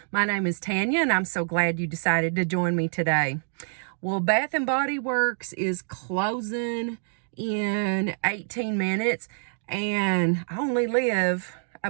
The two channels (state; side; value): silent; left; digital silence